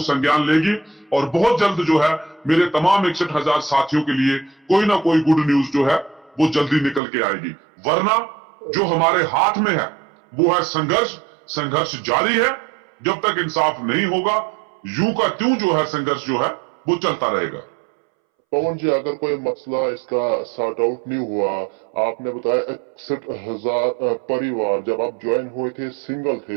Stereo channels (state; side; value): drops out; left; at 7.0 s